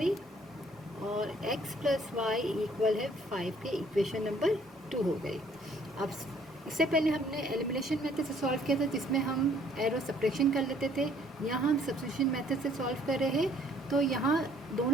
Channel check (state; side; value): normal; both; correlation 0.61